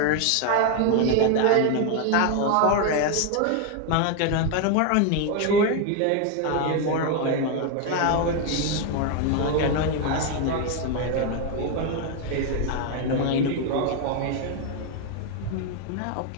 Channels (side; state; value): both; different; correlation 0.01